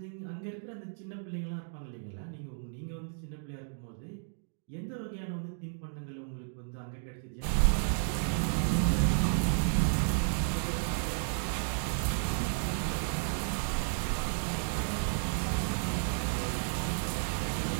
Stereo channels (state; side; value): silent; left; digital silence